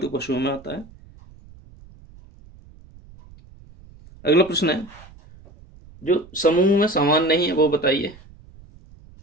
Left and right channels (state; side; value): noise; right; rumble, 23 dB below the sound